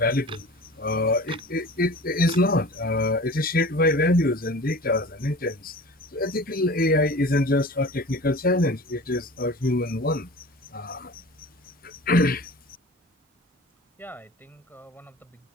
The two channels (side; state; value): both; normal; correlation 0.39